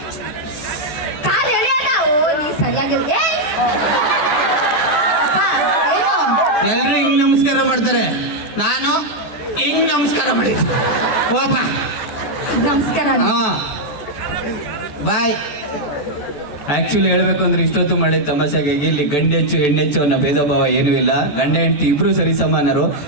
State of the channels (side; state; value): right; late; 14 ms